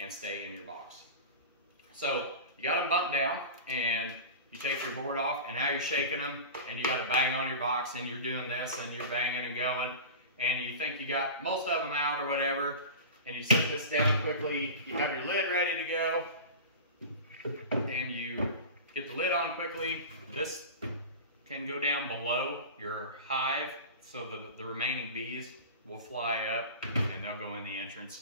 stay in your box. So you got them bumped down, and you take your board off, and now you're shaking them, and you got to bang on your box, and you're doing this, and you're banging and going, and you think you got most of them out or whatever, and you set this down quickly. You have your lid ready to go, and you get the lid on quickly. This can go down below your hive, so the remaining bees will fly up, and they'll go in the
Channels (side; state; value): both; inverted; correlation -0.31